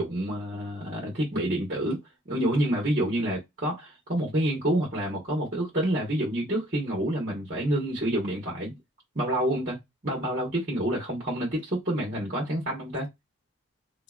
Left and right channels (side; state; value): both; normal; correlation 0.58